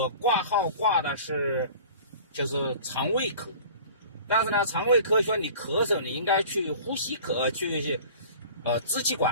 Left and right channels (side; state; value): both; inverted; correlation -0.43